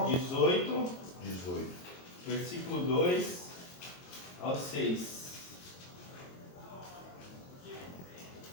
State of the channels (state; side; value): late; right; 22 ms